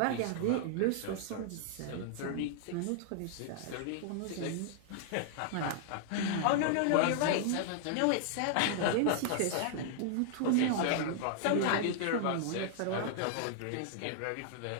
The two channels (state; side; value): different; both; correlation -0.01